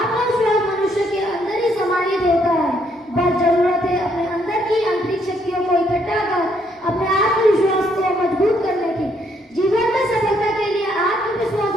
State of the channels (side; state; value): both; normal; correlation 0.71